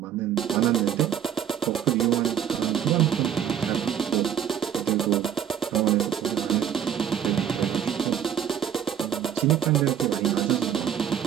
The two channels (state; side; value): quieter; left; 9.3 dB